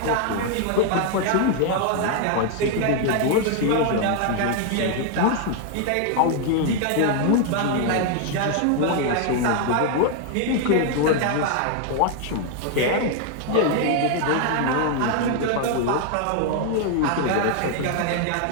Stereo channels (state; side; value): different; both; correlation 0.00